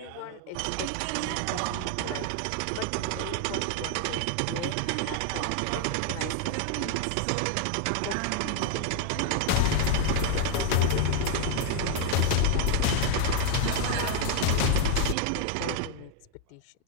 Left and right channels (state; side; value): different; both; correlation 0.01